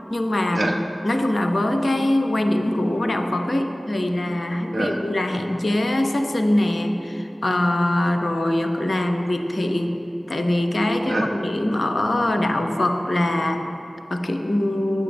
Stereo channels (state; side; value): normal; both; correlation 0.97